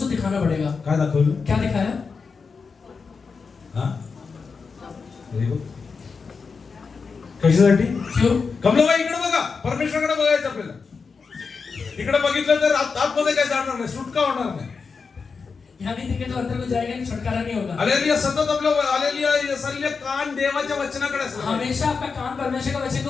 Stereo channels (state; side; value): quieter; right; 5.1 dB